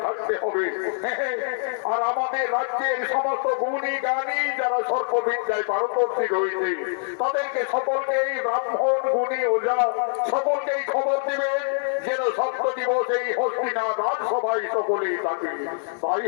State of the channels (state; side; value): silent; right; digital silence